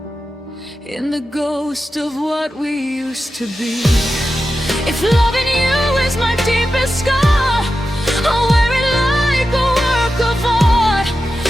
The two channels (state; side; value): normal; both; correlation 0.91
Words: in the ghost of what we used to be. If loving you is my deepest scar, I'll wear it like a work of art.